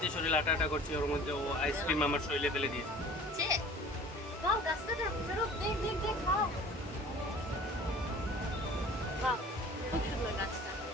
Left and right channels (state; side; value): normal; both; correlation 0.46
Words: শরীর আটা আটা করছি, ওর মধ্যে ও আইসক্রিম আমার শরীরে ফেলে দিয়েছে। বাহ, গাছটা চলো, দেখ দেখ দেখ, বাহ বাহ, খুব সুন্দর গাছটা।